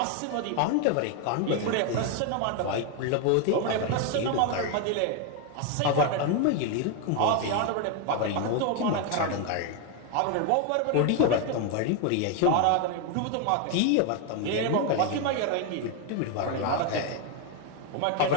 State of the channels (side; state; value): both; different; correlation 0.01